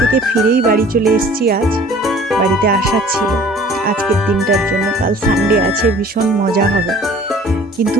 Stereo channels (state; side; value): normal; both; correlation 0.50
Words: ফিরেই বাড়ি চলে এসেছি। আজ বাড়িতে আসার ছিল আজকের দিনটার জন্য। কাল সানডে আছে, ভীষণ মজা হবে। কিন্তু